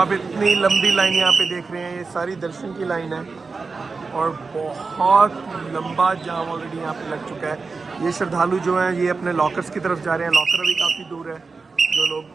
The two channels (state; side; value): quieter; left; 4.4 dB